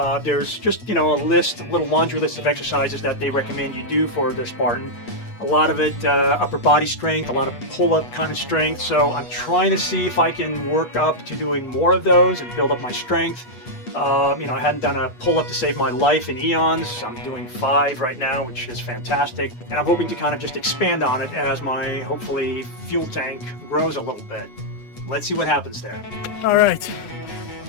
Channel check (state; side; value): late; right; 8.3 ms